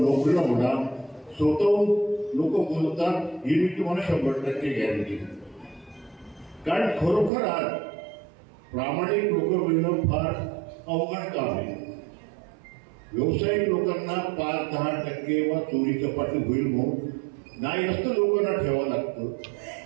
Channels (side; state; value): left; drops out; at 7.3 s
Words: म्हणा स्वतःहून लोक बोलतात ही मी तुम्हाला 100% गॅरंटी. कारण खरोखर आज प्रामाणिक लोक मिळणं फार अवघड काम आहे. व्यावसायिक लोकांना 5-10% वा चोरी चपाटी होईल म्हणून नाही असतं लोकांना ठेवावं लागतं.